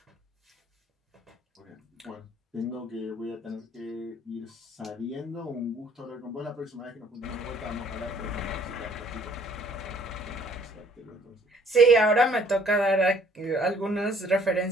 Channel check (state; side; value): normal; both; correlation 0.59